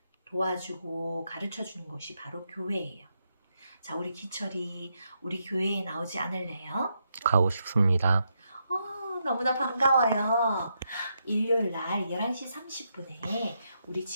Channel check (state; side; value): inverted; both; correlation -0.81